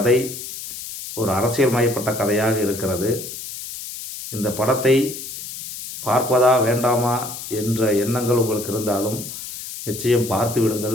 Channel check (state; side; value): noise; left; hiss, 10 dB below the sound